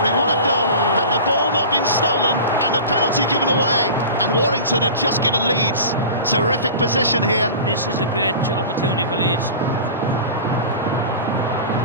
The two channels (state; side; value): inverted; both; correlation -0.35